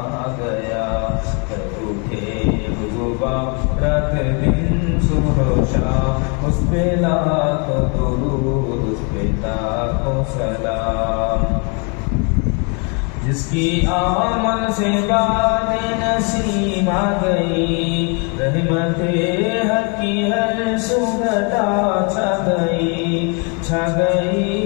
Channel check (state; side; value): quieter; right; 35.1 dB